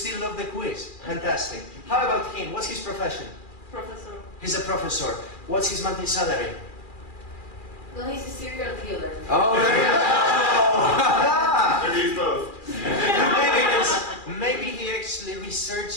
love the quiz. Fantastic. How about him? What's his profession? Professor. He's a professor. What's his monthly salary? Well, he's a serial killer. Oh, there you go. Maybe both. Maybe he actually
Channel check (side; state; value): right; late; 2.4 ms